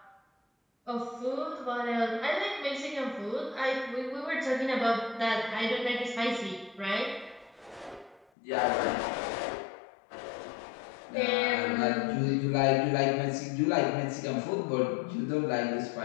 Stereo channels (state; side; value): drops out; right; at 8.2 s